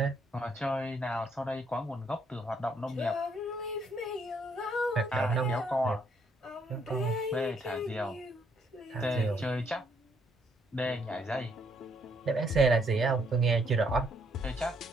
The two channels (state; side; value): normal; both; correlation 0.70